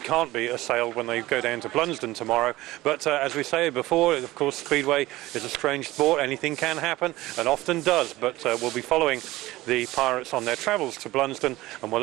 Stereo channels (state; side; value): quieter; left; 18.0 dB